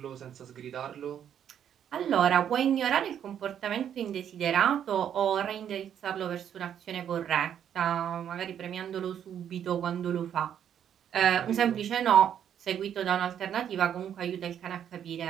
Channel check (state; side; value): quieter; left; 9.3 dB